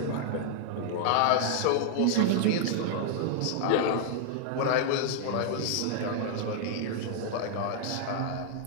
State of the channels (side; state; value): both; different; correlation 0.00